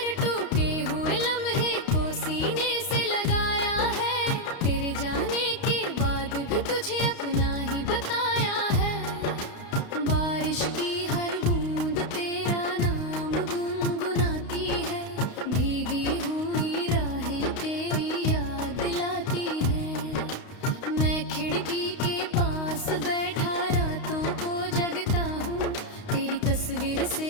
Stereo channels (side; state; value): right; late; 32 ms